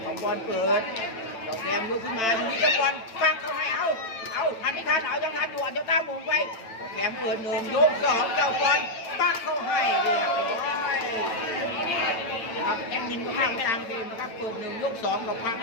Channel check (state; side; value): late; right; 9.0 ms